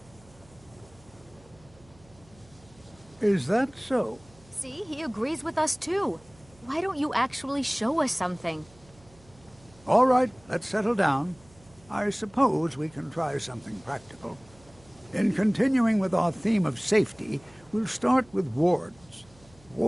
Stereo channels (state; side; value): noise; right; hum, 26 dB below the sound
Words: Is that so? See, he agrees with us too. Why don't you actually show us something? All right, let's settle down. I suppose we can try something practical. In continuing with our theme of safety, we'll start with wards.